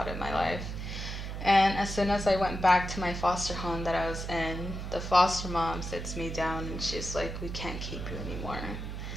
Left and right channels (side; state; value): right; noise; hum, 6 dB below the sound